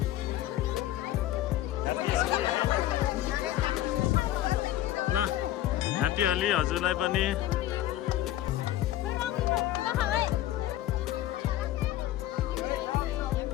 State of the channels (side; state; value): right; quieter; 13.7 dB